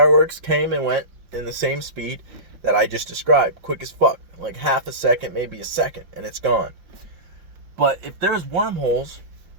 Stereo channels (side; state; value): left; late; 5.5 ms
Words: came and went in the same speed that I just described, quick as fuck, like half a second, maybe a second, and it's gone. But if there's wormholes